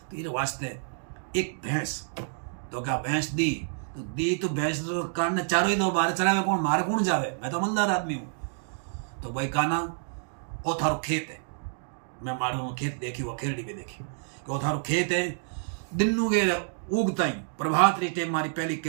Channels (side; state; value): left; silent; digital silence